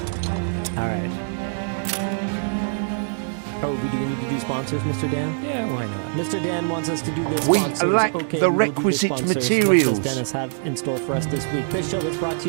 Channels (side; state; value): left; silent; digital silence